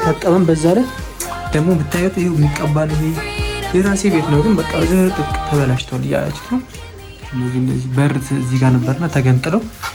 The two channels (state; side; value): identical; both; correlation 1.00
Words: በዛ ላይ ደግሞ ብታዩት ይሄው የሚቀባል። ይሄ የራሴ ቤት ነው ግን በቃ ዝርጥቅ ተበላሽቷል እያላችሁ ነው። እነዚህ በር እዚህ ጋር ነበርና ተገንጥለው